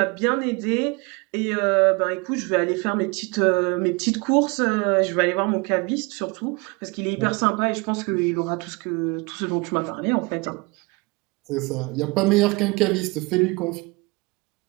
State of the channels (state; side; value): quieter; left; 27.1 dB